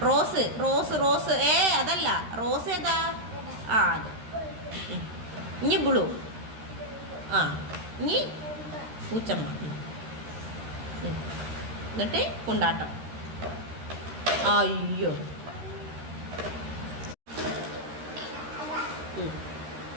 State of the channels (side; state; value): left; late; 13 ms